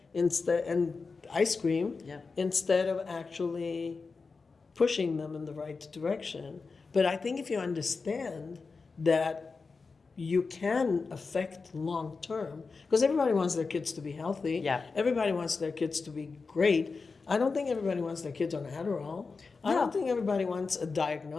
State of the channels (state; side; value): quieter; right; 4.5 dB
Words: and ice cream, Yeah. instead of actually pushing them in the right direction. But I think if you understand that you can affect long term, because everybody wants their kids to be healthy. Yeah. Everybody wants their kids to be great. I don't think everybody wants their kids on Adderall. I No. don't think everybody wants a